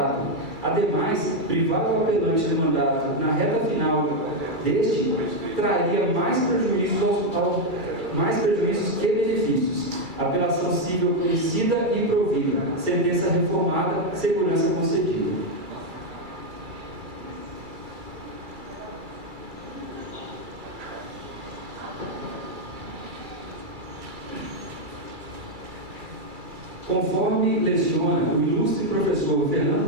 Ademais, privar o apelante do mandato na reta final deste traria mais prejuízos que benefícios. Apelação civil conhecida e provida, sentença reformada, segurança concedida. Conforme leciona o ilustre professor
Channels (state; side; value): late; left; 2.3 ms